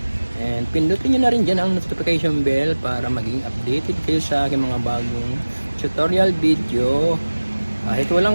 And pindutin nyo na rin dyan ang notification bell para maging updated kayo sa aking mga bagong tutorial video. Kahit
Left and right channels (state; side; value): inverted; both; correlation -1.00